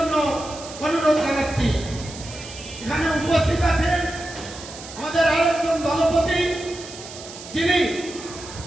অনুরোধ জানাচ্ছি। উপস্থিত আছেন আমাদের আরেকজন দলপতি, যিনি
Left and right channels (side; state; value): right; noise; hiss, 14 dB below the sound